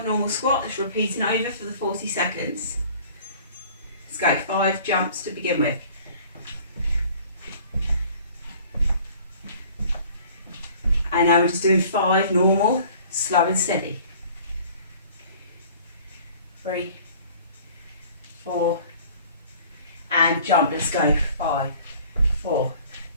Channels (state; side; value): inverted; both; correlation -0.50